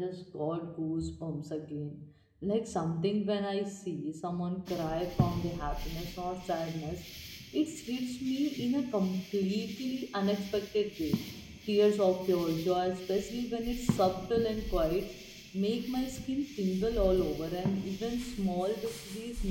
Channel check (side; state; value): both; identical; correlation 1.00